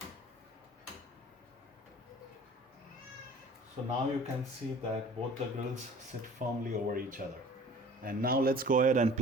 So now you can see that both the grills sit firmly over each other. And now let's go ahead and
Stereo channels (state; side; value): normal; both; correlation 0.46